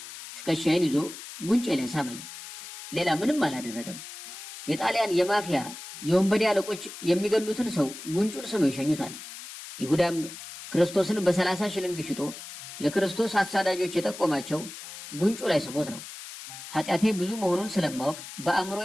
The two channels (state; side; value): noise; left; hiss, 12 dB below the sound